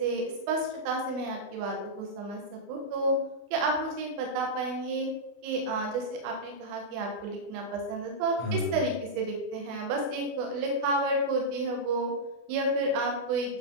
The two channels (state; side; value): late; left; 24 ms